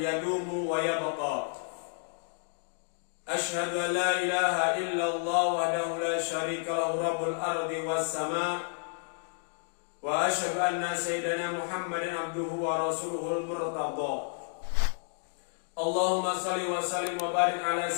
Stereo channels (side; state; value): right; silent; digital silence